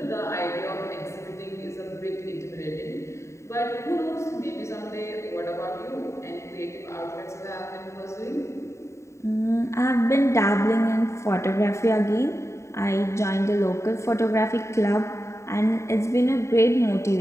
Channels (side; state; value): right; late; 0.14 ms